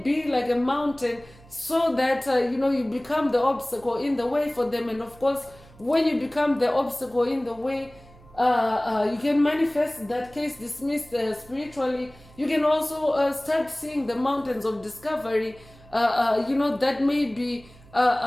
like a mountain, so that you become the obstacle in the way for them. And of course, when you become the obstacle in the way, you can manifest that case dismissed spiritually, You can also start seeing the mountains of discovery, that may be,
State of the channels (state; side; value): noise; right; hum, 24 dB below the sound